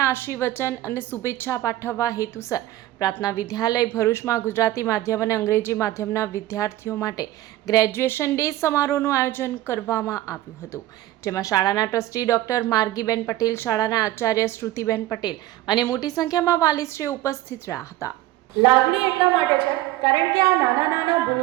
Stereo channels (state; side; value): quieter; left; 15.4 dB